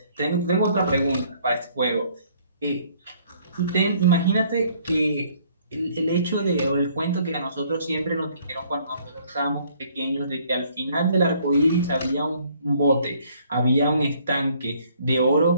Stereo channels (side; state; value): both; inverted; correlation -0.62